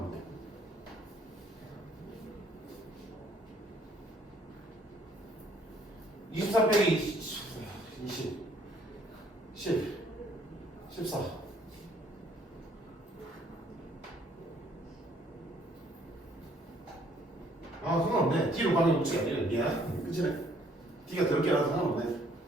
23 빼기 20 10 14 상관없네. D로 가는 법칙이 아니네. 미안. 그치네. D가 더럽게 나와도 상관없네.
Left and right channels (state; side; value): normal; both; correlation 0.63